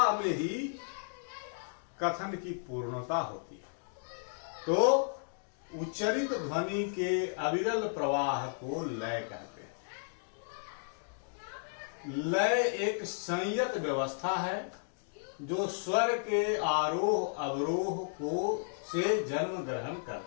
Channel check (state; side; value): silent; right; digital silence